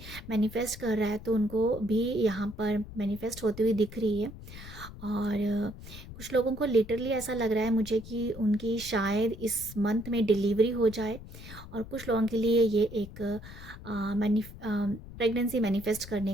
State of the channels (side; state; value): left; noise; rumble, 14 dB below the sound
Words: मैनिफेस्ट कर रहा है तो उनको भी यहाँ पर मैनिफेस्ट होती हुई दिख रही है। और कुछ लोगों को लिटरली ऐसा लग रहा है मुझे कि उनकी शायद इस मंथ में डिलीवरी हो जाए। और कुछ लोगों के लिए ये एक प्रेगनेंसी मैनिफेस्ट